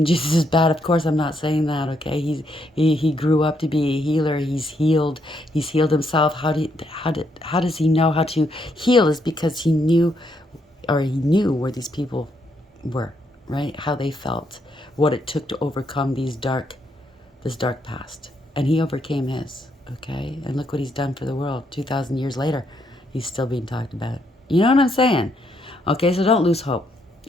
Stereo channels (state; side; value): normal; both; correlation 0.76